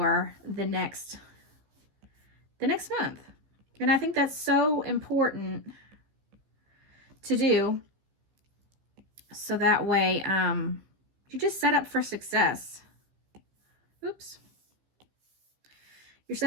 the next month. And I think that's so important to do, so that way you're just set up for success. Oops. You're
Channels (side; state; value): left; late; 15 ms